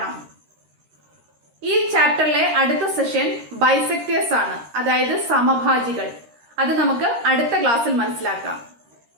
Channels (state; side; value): late; left; 13 ms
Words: ഈ ചാപ്റ്ററിലെ അടുത്ത സെഷൻ ബൈസെക്ടേഴ്സ് ആണ്, അതായത് സമഭാജികൾ. അത് നമുക്ക് അടുത്ത ക്ലാസ്സിൽ മനസ്സിലാക്കാം.